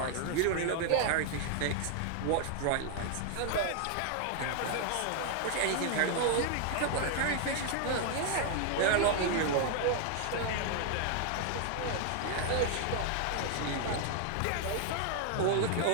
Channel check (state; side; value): different; both; correlation 0.00